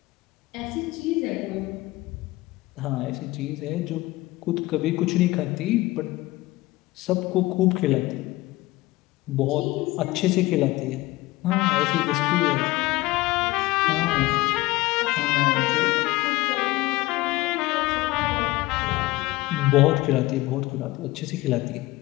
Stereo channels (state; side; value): quieter; right; 19.5 dB